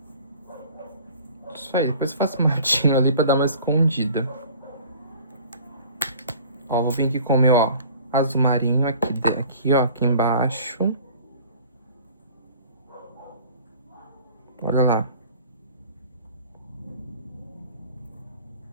Isso aí, depois eu faço um matinho ali pra dar uma escondida. Ó, vou vir aqui com o meu, ó, azul marinho aqui, ó, aqui embaixo. Olha lá.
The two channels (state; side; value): inverted; both; correlation -0.47